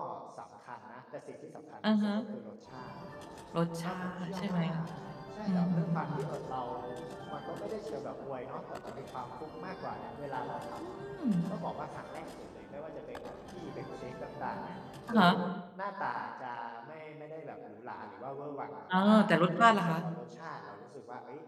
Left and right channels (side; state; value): both; identical; correlation 1.00